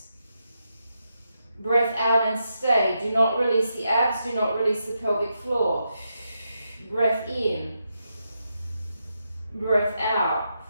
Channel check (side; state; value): both; inverted; correlation -0.84